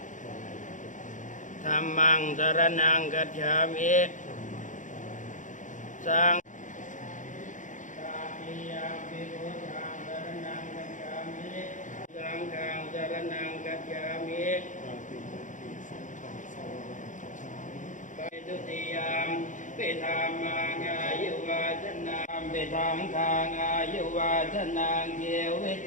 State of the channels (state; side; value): late; right; 0.37 ms